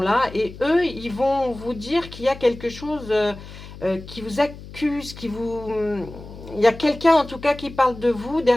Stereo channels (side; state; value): left; noise; hum, 15 dB below the sound